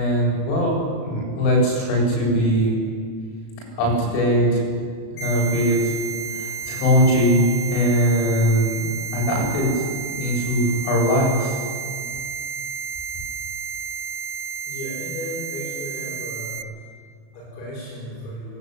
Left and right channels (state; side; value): late; right; 37 ms